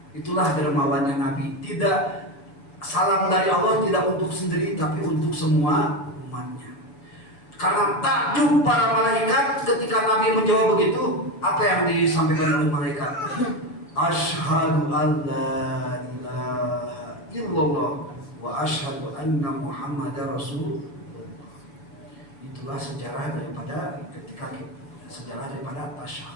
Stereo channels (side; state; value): right; late; 7.0 ms